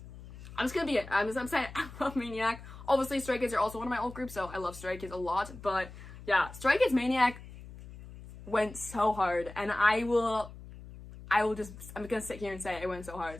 I'm just gonna be it. I'm saying I love Maniac. Obviously, Stray Kids are also one of my old groups, so I love Stray Kids a lot, but yeah, Stray Kids Maniac went so hard, and I'm gonna sit here and say it went so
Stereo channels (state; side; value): noise; left; hum, 15 dB below the sound